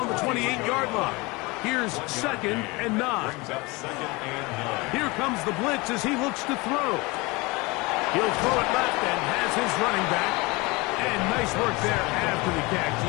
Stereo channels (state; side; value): quieter; right; 24.6 dB